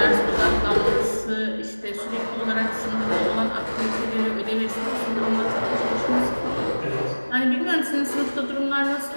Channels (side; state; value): both; inverted; correlation -1.00